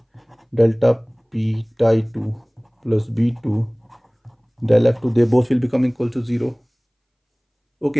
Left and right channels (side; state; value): both; identical; correlation 1.00